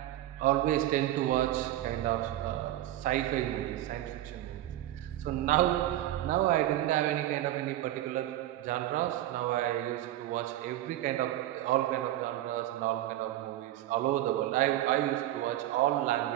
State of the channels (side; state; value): left; quieter; 14.1 dB